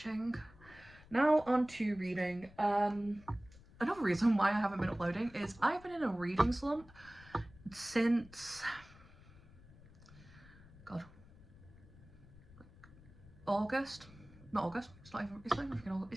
Now on to reading. Another reason why I haven't been uploading is I've been in a reading slump since August. Not August. It's not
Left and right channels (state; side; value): noise; left; rumble, 22 dB below the sound